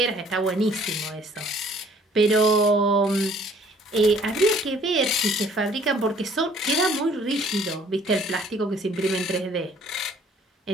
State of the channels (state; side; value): normal; both; correlation 0.58